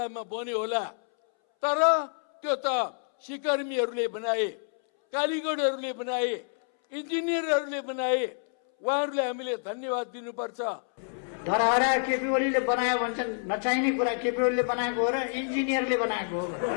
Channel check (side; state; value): right; silent; 59 dB below the other